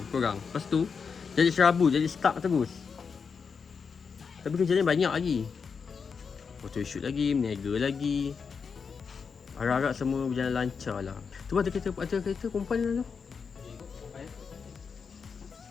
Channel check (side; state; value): right; quieter; 5.8 dB